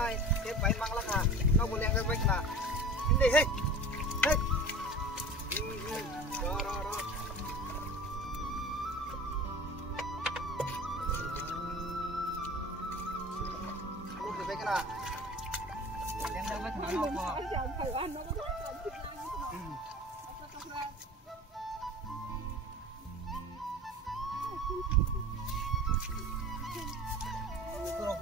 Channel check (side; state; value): both; normal; correlation 0.37